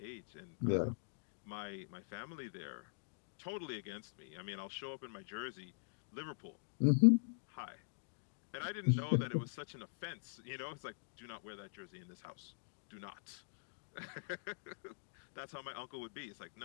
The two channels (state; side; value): silent; right; digital silence